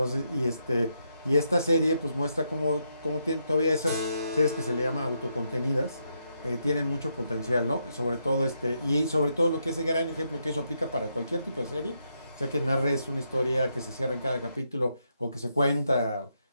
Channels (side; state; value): both; inverted; correlation -0.80